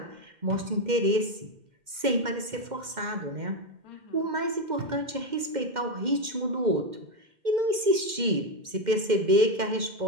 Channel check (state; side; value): late; left; 2.1 ms